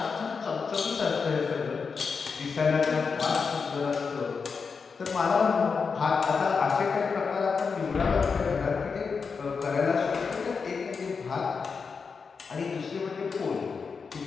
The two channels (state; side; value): quieter; right; 5.3 dB